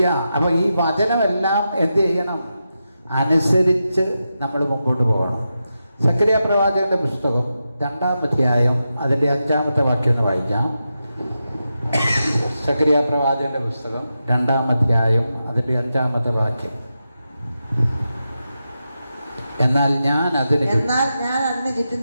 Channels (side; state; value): both; inverted; correlation -0.89